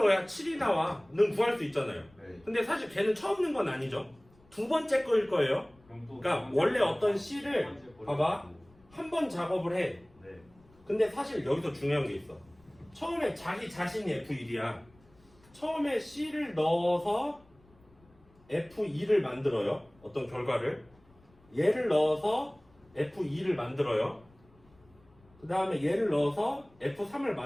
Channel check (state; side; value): noise; left; rumble, 29 dB below the sound